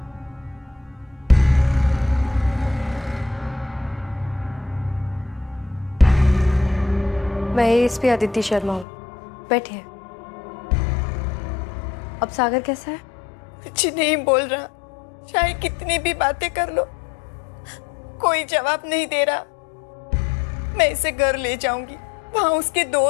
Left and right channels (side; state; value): right; drops out; at 8.8 s